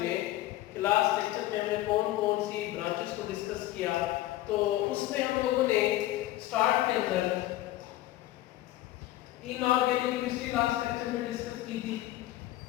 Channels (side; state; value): right; quieter; 15.6 dB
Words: लास्ट लेक्चर में हमने कौन-कौन सी ब्रांचेस को डिस्कस किया, तो उसमें हम लोगों ने स्टार्ट के अंदर इनऑर्गेनिक केमिस्ट्री लास्ट लेक्चर में डिस्कस की थी।